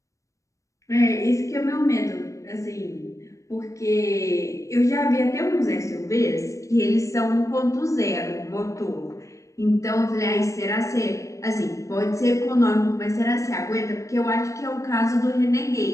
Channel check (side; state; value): right; late; 0.15 ms